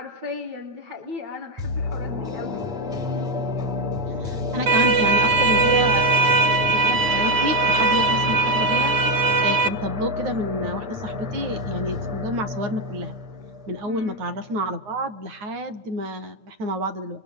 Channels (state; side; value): late; left; 9.1 ms